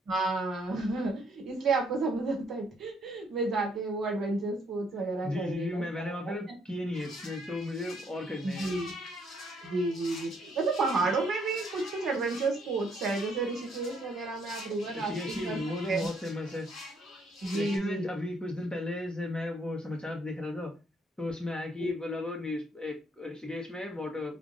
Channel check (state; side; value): normal; both; correlation 0.68